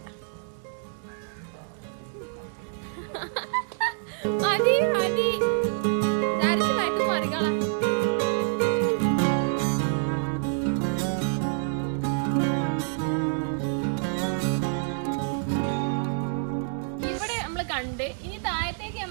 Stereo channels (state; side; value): silent; left; digital silence